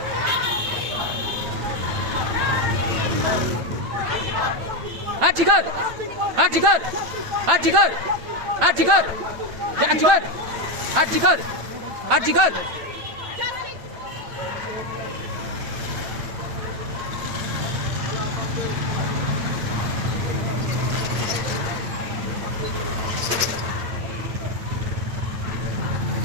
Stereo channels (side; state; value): left; late; 8.9 ms